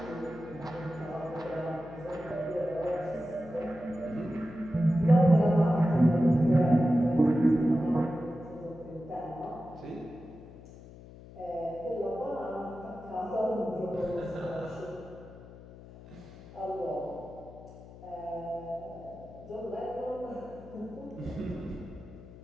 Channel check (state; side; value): noise; left; hum, 18 dB below the sound